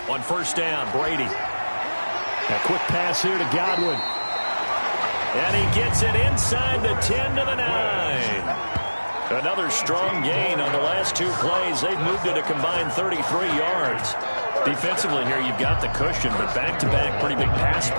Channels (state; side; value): inverted; both; correlation -1.00